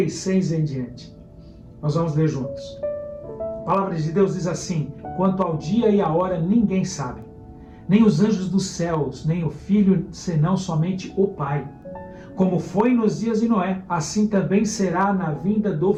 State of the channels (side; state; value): both; identical; correlation 1.00